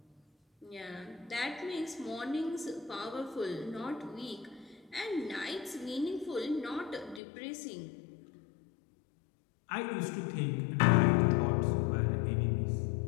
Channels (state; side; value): drops out; right; at 7.2 s